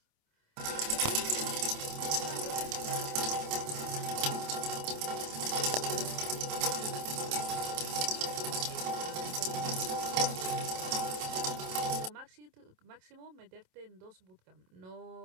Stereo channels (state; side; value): late; left; 27 ms